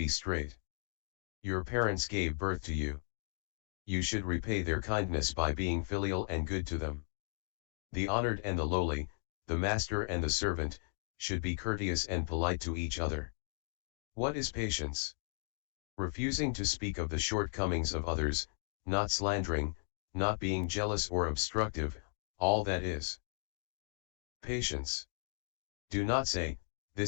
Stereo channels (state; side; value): silent; right; digital silence